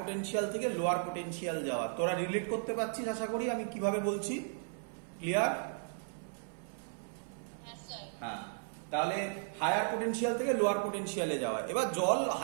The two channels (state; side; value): silent; left; 54 dB below the other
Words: থেকে লোয়ার পোটেনশিয়াল যাওয়া। তোরা রিলেট করতে পারছিস আশা করি আমি কিভাবে বলছি, ক্লিয়ার? হ্যাঁ, তাহলে হায়ার পোটেনশিয়াল থেকে লোয়ার পোটেনশিয়ালে যাওয়া। এবার জল